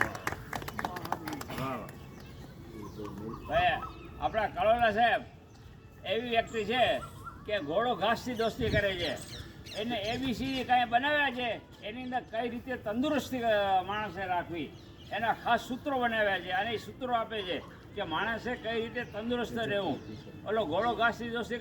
આપણા કલોલા સાહેબ એવી વ્યક્તિ છે કે ઘોડો ઘાસથી દોસ્તી કરે છે. એને એબીસી કાંઈ બનાવ્યા છે એની અંદર કઈ રીતે તંદુરસ્તી માણસે રાખવી એના ખાસ સૂત્રો બનાવ્યા છે અને એ સૂત્રો આપે છે કે માણસે કઈ રીતે તંદુરસ્ત રહેવું. ઓલો ઘોડો ઘાસથી દોસ્તી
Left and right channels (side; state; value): both; identical; correlation 1.00